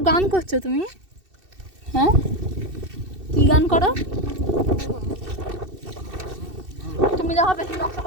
গান করছো তুমি? হ্যাঁ, কি গান করো তুমি? দেখো বেশি নকশা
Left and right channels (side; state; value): left; late; 2.7 ms